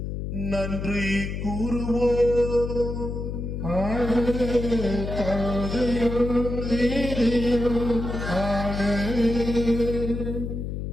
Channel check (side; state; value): left; noise; hum, 5 dB below the sound